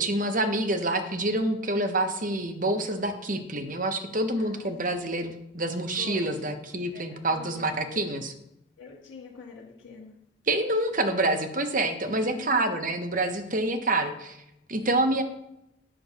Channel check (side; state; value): both; normal; correlation 0.09